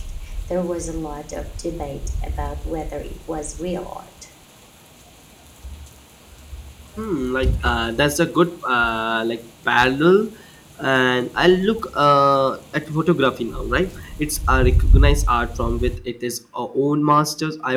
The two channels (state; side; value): identical; both; correlation 1.00